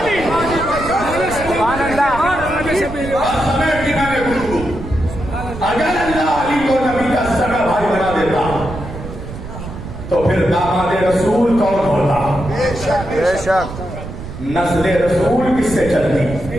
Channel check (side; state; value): right; noise; rumble, 10 dB below the sound